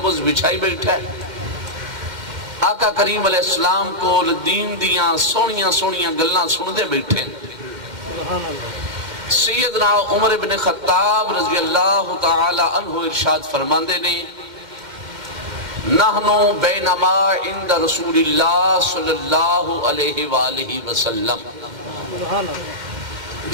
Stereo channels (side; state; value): left; late; 2.1 ms